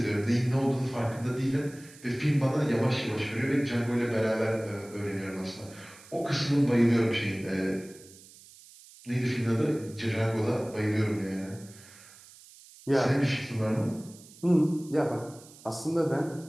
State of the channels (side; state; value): right; noise; hiss, 22 dB below the sound